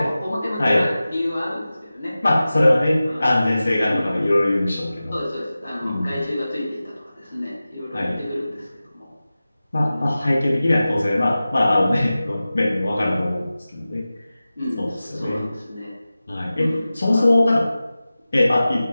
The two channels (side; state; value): both; inverted; correlation -0.96